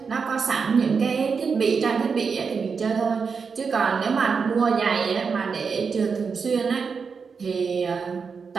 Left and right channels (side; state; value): left; quieter; 5.5 dB